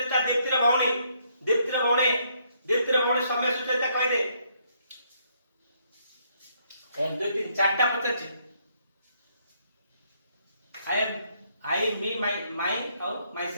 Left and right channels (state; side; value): inverted; both; correlation -0.71